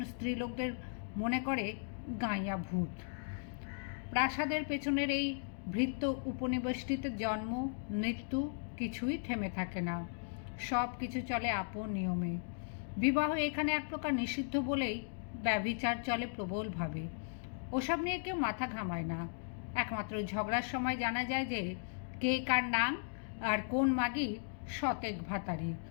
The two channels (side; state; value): right; silent; digital silence